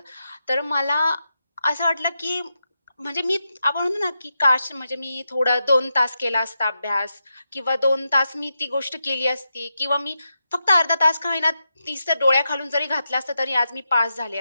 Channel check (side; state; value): both; inverted; correlation -0.87